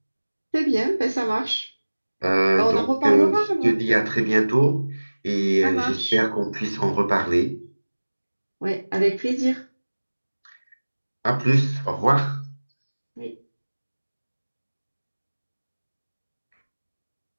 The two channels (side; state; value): both; inverted; correlation -1.00